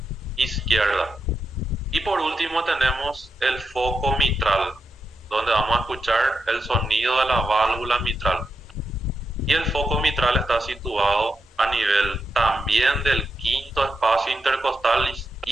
izquierda. Y por último tenemos el foco mitral, donde vamos a escuchar el sonido de la válvula mitral. Y el foco mitral está situado a nivel también del quinto espacio intercostal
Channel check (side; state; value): both; normal; correlation 0.86